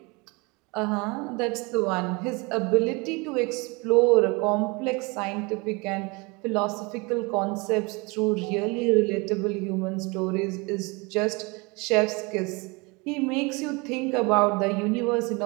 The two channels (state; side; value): quieter; left; 27.5 dB